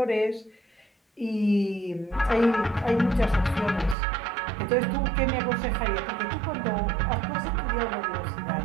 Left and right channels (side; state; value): left; drops out; at 4.0 s